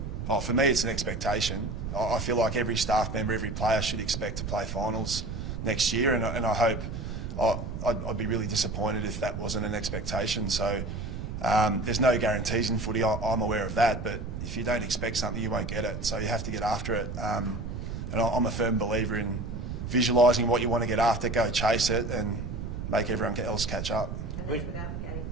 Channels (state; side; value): noise; right; rumble, 6 dB below the sound